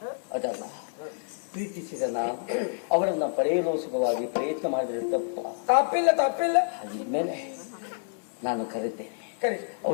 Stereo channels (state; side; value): silent; right; digital silence